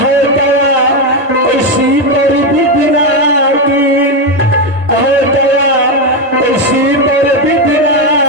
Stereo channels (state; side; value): normal; both; correlation 0.08